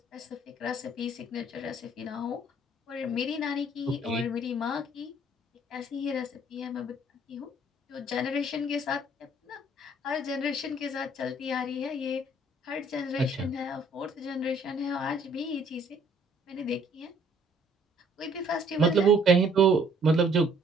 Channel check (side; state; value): both; normal; correlation 0.60